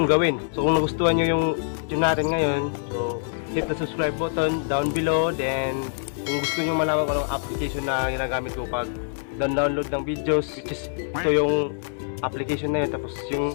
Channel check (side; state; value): right; silent; digital silence